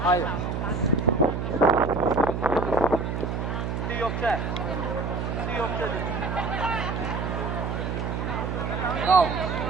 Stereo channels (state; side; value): noise; right; hum, 2 dB below the sound